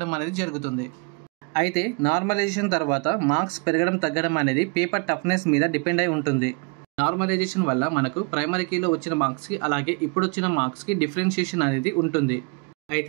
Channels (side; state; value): left; quieter; 34.4 dB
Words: అనేది జరుగుతుంది. అయితే నార్మలైజేషన్ తర్వాత మార్క్స్ పెరగడం తగ్గడం అనేది పేపర్ టఫ్నెస్ మీద డిపెండ్ అయి ఉంటుంది. నార్మలైజేషన్ వల్ల మనకు ప్రైమరీ కీలో వచ్చిన మార్క్స్కి అలాగే ఇప్పుడు వచ్చిన మార్క్స్కి డిఫరెన్షియేషన్ అనేది ఉంటుంది.